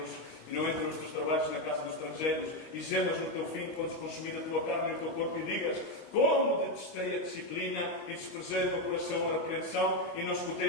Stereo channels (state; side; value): late; right; 25 ms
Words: os teus trabalhos na casa dos estrangeiros, e gemas no teu fim quando se consumir a tua carne e o teu corpo, e digas: como detestei a disciplina e desprezei o meu coração a repreensão, e não